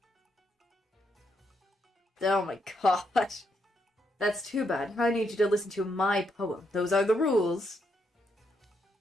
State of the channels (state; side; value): normal; both; correlation 0.78